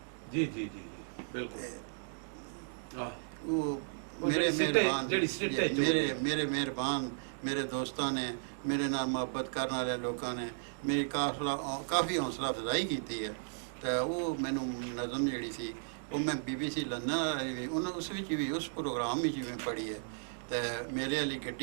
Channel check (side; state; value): left; silent; digital silence